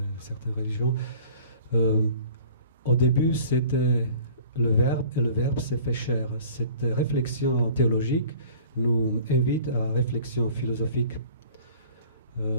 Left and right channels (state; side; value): inverted; both; correlation -0.47